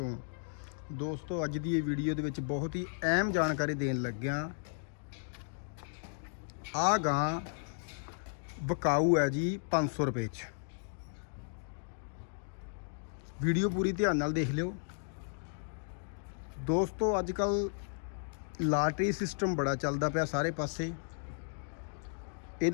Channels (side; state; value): right; silent; digital silence